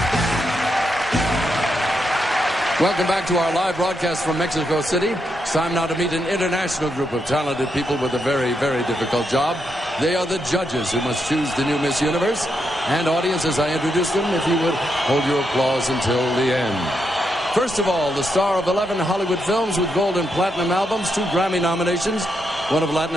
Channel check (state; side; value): normal; both; correlation 0.81